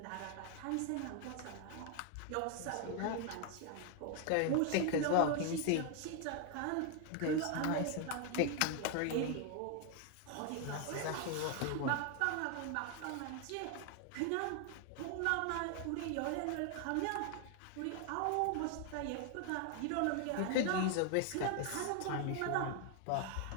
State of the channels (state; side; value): different; both; correlation 0.00